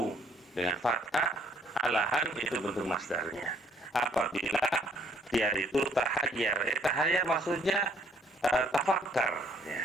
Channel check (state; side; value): normal; both; correlation 0.62